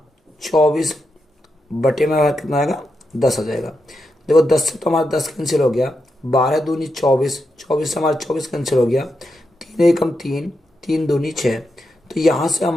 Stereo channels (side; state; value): both; normal; correlation 0.86